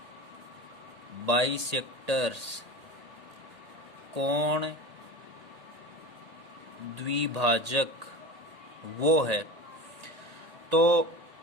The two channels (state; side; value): late; left; 1.8 ms